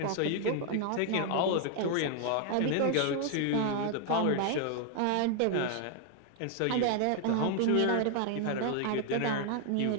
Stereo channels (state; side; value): different; both; correlation 0.00